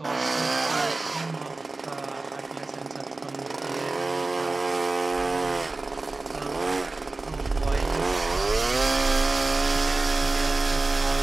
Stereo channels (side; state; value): left; quieter; 3.3 dB